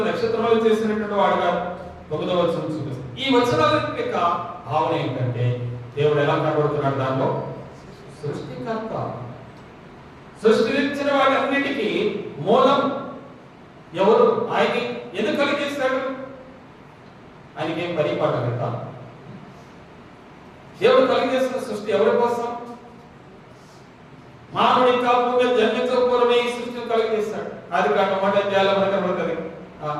నక్షత్రములు చేసినటువంటి వాడుగా 9వ వచనం చూపిస్తుంది. ఈ వచనాల యొక్క భావన ఏంటంటే దేవుడు ఎలా కనబడుతున్నాడు దానిలో? సృష్టికర్త. సృష్టించిన వాటన్నిటికీ మూలం ఎవరు? ఆయన ఎందుకు కలిగేస్తాడు? ఆయనకి ఏం పరిపాలన కదా. దేవుడు కలిగేసిన సృష్టి ఎవరి కోసం? మానవుడి కాపుగా జన్మించకపోవడమే ఈ సృష్టిని కలిగేస్తాడు. అది కాక మాట చేయాలి మనకు కనబడుతుంది.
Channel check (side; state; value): both; identical; correlation 1.00